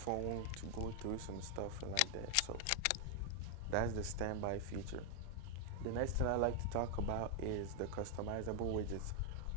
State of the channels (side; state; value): both; different; correlation 0.00